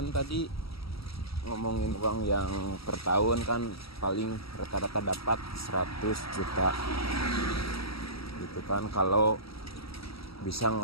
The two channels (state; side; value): late; right; 0.76 ms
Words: tadi ngomongin uang yang per tahun kan paling rata-rata dapat 100 juta gitu kan, kalau bisa